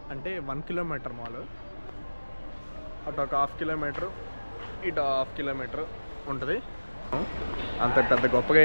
అంటే 1 కిలోమీటర్ మాల్. అటు ఒక 1/2 కిలోమీటర్, ఇటు 1/2 కిలోమీటర్ ఉంటుంది. అంత పెద్ద గొప్పగా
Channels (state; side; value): inverted; both; correlation -1.00